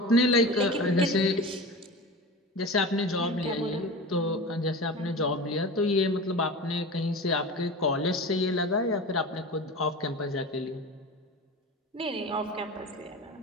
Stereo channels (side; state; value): both; normal; correlation 0.31